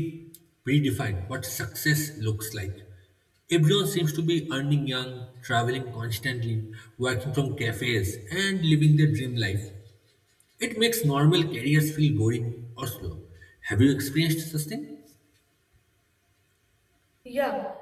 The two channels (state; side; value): identical; both; correlation 1.00